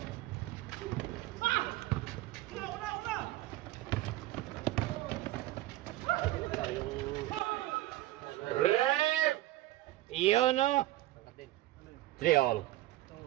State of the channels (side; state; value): left; quieter; 16.4 dB